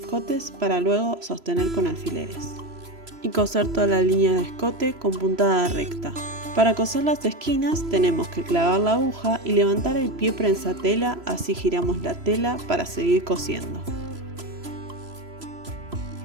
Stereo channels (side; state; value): left; late; 3.0 ms